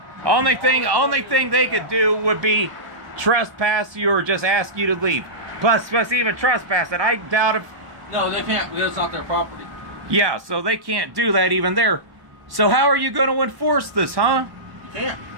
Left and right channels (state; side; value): late; left; 1.1 ms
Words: Only thing they could do would be trespass you or just ask you to leave. Plus even trespass it. I doubt if... No, they can't because it's not their property. Yeah, so they can't do that even there. So how are you going to enforce this, huh? You can't.